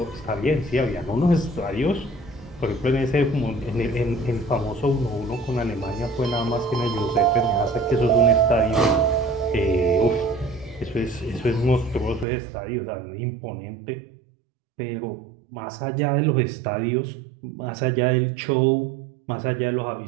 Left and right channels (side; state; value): left; drops out; at 12.2 s